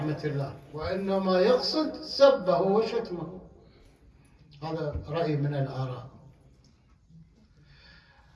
الله، وإنما يقصد سبه وشتمه. هذا رأي من الآراء.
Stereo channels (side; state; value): both; identical; correlation 1.00